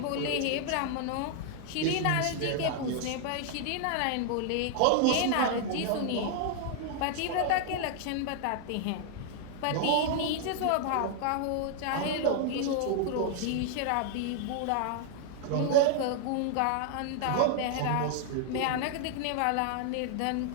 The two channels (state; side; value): different; both; correlation 0.00